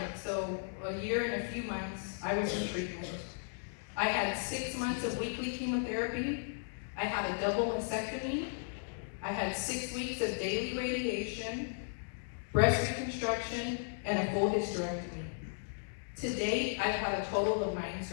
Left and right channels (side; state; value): right; silent; digital silence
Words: so a year and a few months, I was in treatment. I had 6 months of weekly chemotherapy. I had a double mastectomy. I had 6 weeks of daily radiation, breast reconstruction, and a full hysterectomy. To date, I've had a total of 9